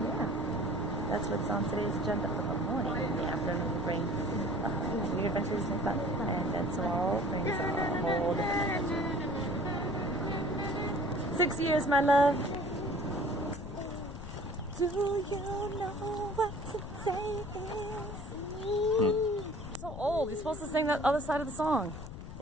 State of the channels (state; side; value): noise; left; rumble, 10 dB below the sound